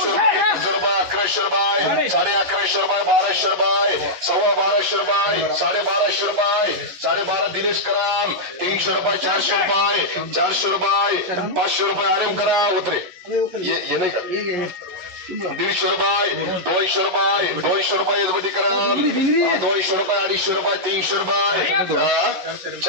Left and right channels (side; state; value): left; late; 11 ms